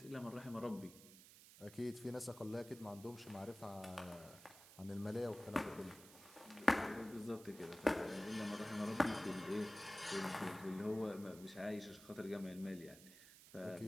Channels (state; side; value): noise; right; hiss, 18 dB below the sound